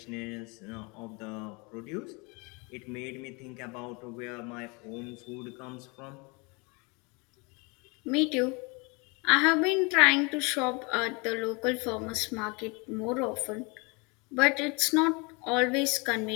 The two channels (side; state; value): right; quieter; 29.4 dB